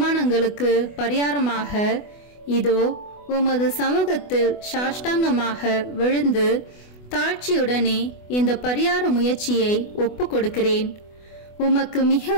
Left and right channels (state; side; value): late; right; 24 ms